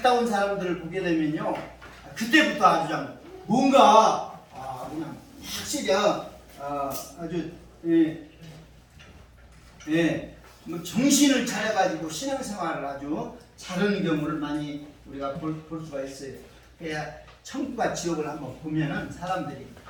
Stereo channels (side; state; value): both; identical; correlation 1.00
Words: 온 사람들을 보게 되면요, 그때부터 아주 뭔가 그냥 확실히 아주 뭐 정신을 차려가지고 신앙생활을 아주 잘하는 경우를 많이 우리가 볼 수가 있어요. 그래야 천국과 지옥을 한번 보면은 사람들이